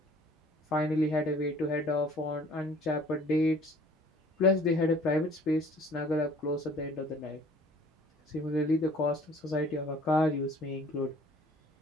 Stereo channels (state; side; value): normal; both; correlation 0.52